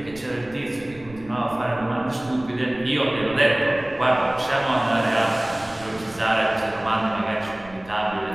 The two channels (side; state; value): right; noise; rumble, 21 dB below the sound